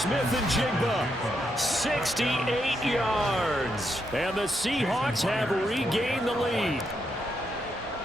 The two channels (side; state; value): both; normal; correlation 0.80